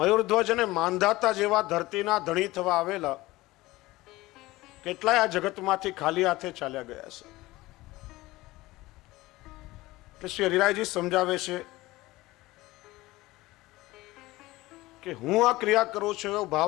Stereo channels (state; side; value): quieter; right; 19.1 dB